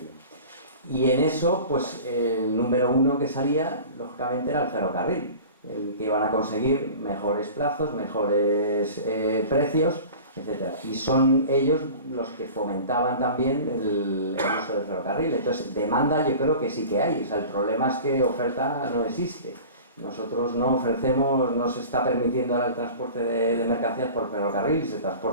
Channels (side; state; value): both; inverted; correlation -0.39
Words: Y en eso, pues el número uno que salía, lógicamente, era el ferrocarril, el que iban a conseguir mejores plazos, mejores precios, etc. Y son ellos los que fomentaban también el uso del ferrocarril. Entonces, demanda yo creo que sí que hay. O sea, el problema es que oferta no existe. Nosotros no ofrecemos, no se está permitiendo ahora el transporte de mercancías por ferrocarril, se